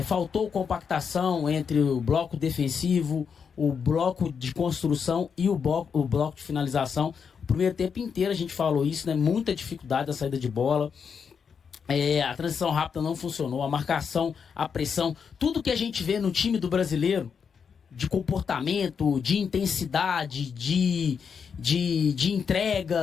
faltou compactação entre o bloco defensivo, o bloco de construção e o bloco de finalização. O primeiro tempo inteiro a gente falou isso, né? Muita dificuldade da saída de bola. A transição rápida não funcionou, a marcação, a pressão, tudo que a gente vê no time do brasileiro, de comportamento, de intensidade, de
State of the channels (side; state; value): right; quieter; 6.5 dB